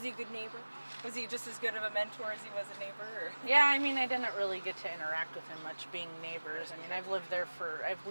he a good neighbor? Was he just as good of a mentor as he was a neighbor? Or? Yeah, I mean, I didn't really get to interact with him much being neighbors. I mean, I've lived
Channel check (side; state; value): both; inverted; correlation -1.00